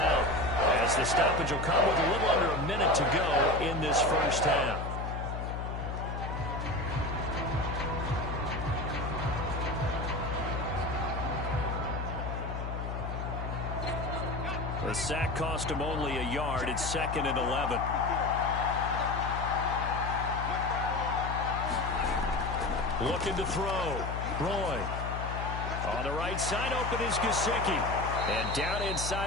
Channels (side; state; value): left; noise; hum, 4 dB below the sound